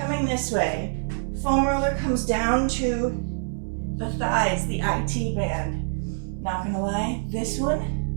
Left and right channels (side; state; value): left; silent; digital silence